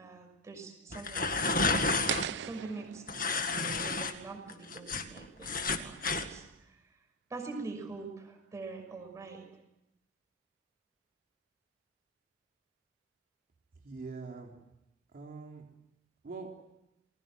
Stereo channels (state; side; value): normal; both; correlation 0.05